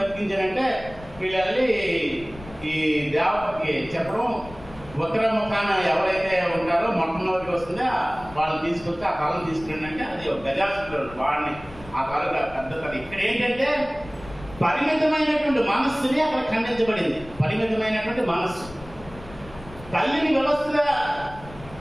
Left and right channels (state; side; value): noise; left; rumble, 17 dB below the sound